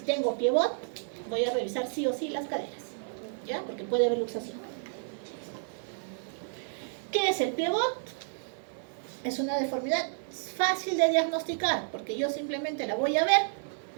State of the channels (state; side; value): silent; left; 57 dB below the other